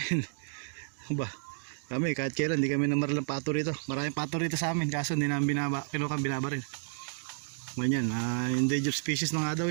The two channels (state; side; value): silent; left; digital silence